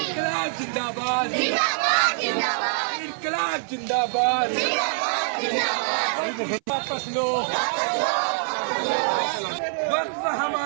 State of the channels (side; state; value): left; silent; 56 dB below the other